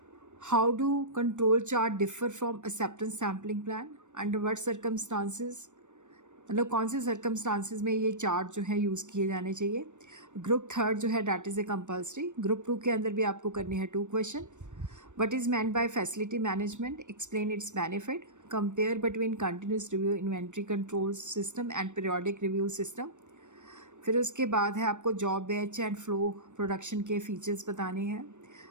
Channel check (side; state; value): left; late; 0.85 ms